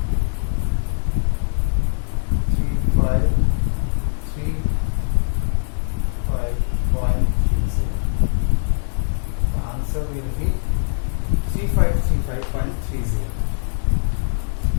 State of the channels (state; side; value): silent; right; digital silence